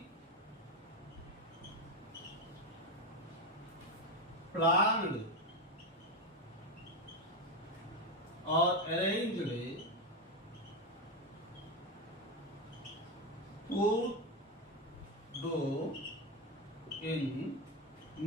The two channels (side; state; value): both; normal; correlation 0.12